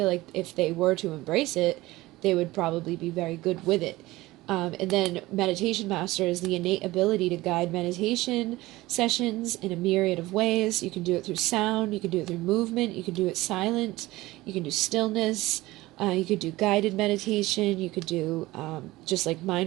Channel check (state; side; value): quieter; left; 18.7 dB